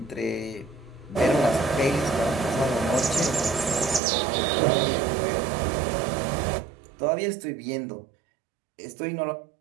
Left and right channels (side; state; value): left; drops out; at 4.0 s